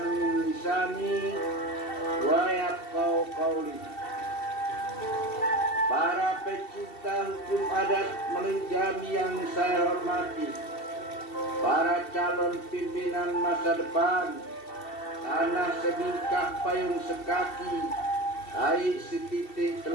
min lisani wa yafqahu qawli. Para pecinta hukum adat Melinjami yang saya hormati, para calon pimpinan masa depan, tanah sebingkah payung sekaki, air setitik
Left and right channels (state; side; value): late; right; 2.7 ms